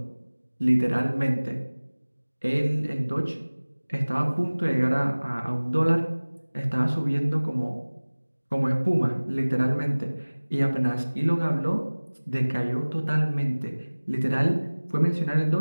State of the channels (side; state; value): both; inverted; correlation -1.00